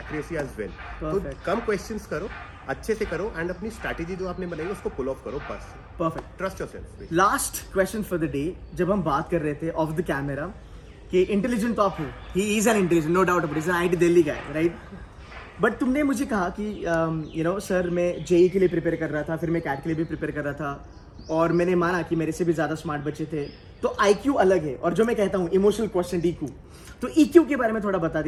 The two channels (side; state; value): both; identical; correlation 1.00